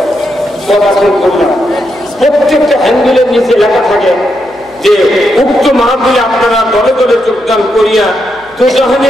পড়াশোনা করলাম। প্রত্যেকটা হ্যান্ডেলের নিচে লেখা থাকে যে উক্ত মাহফিলে আপনারা দলে দলে যোগদান করিয়া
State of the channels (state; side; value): noise; left; hum, 30 dB below the sound